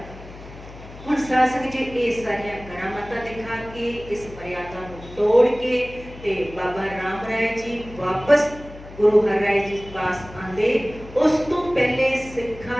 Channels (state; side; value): noise; left; hum, 16 dB below the sound